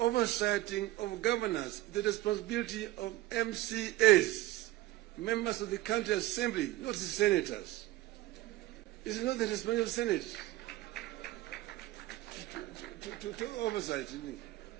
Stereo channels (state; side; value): quieter; left; 16.7 dB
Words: of governors, the responsibility of MCAs, members of the county assembly, not the senators. It's not the responsibility of the Senate to oversight.